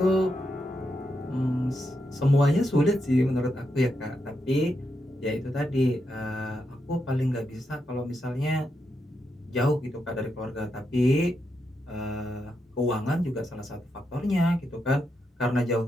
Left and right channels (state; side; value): normal; both; correlation 0.83